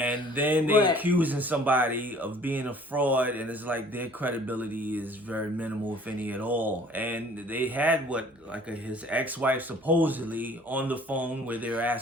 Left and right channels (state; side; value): normal; both; correlation 0.53